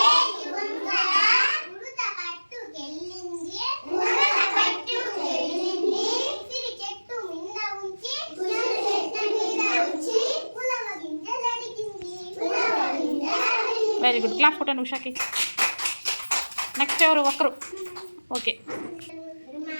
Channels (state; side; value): inverted; both; correlation -1.00